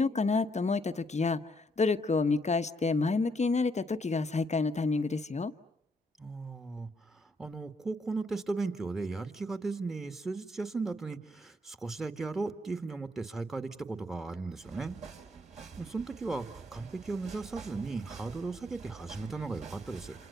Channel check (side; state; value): both; normal; correlation 0.73